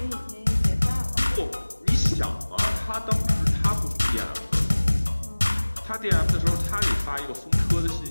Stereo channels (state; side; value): inverted; both; correlation -1.00